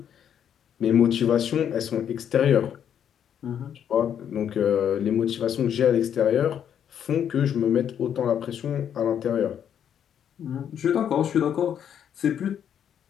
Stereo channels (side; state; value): right; quieter; 9.0 dB